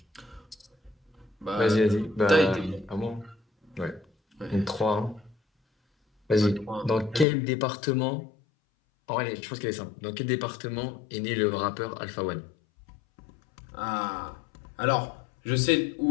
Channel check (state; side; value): drops out; right; at 7.2 s